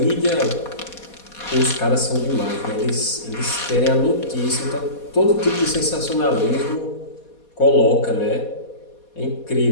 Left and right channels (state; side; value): late; right; 4.2 ms